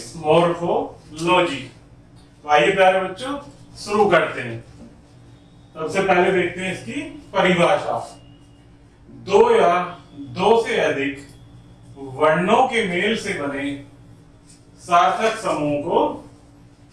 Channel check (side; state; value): both; identical; correlation 1.00